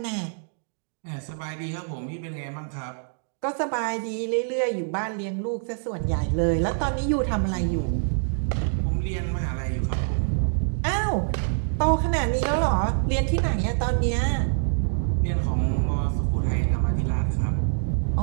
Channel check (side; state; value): left; silent; digital silence